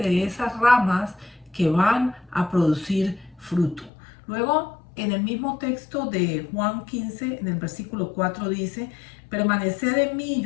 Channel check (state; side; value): drops out; right; at 3.9 s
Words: esas ramas que van a producir fruto. Luego, en el mismo texto de Juan 15, en el versículo 4 dice, permaneced en mí y